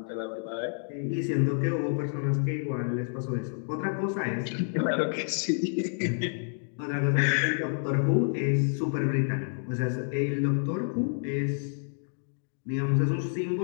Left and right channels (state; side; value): silent; right; digital silence